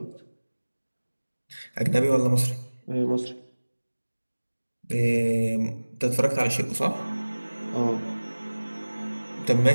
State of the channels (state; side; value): inverted; both; correlation -1.00